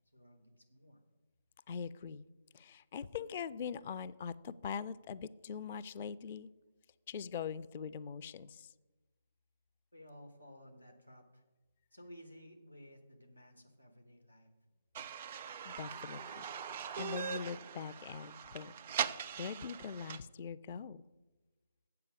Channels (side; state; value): both; inverted; correlation -0.50